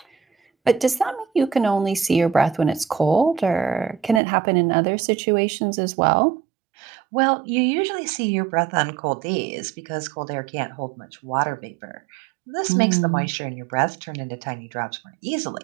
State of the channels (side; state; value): left; drops out; at 4.2 s